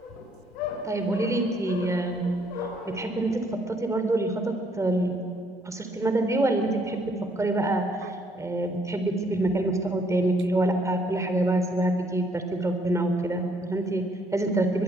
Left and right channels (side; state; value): both; normal; correlation 0.67